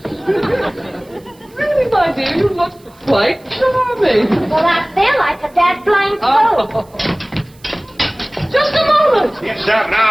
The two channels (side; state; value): right; noise; hiss, 29 dB below the sound